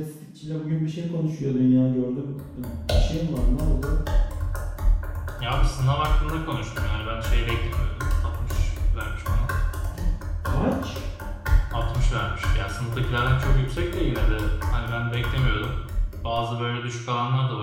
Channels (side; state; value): both; identical; correlation 1.00